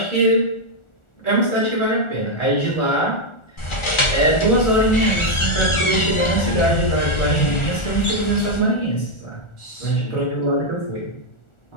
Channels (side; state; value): right; late; 1.4 ms